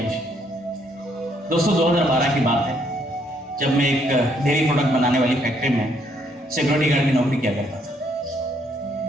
दोस्तों 2012 की बात है, जब मैं एक डेयरी प्रोडक्ट बनाने वाली फैक्ट्री में सिक्योरिटी गार्ड की नौकरी किया करता था।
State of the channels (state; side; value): normal; both; correlation 0.70